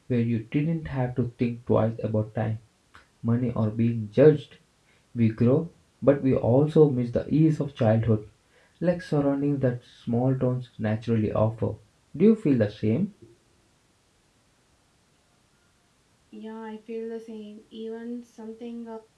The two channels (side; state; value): both; identical; correlation 1.00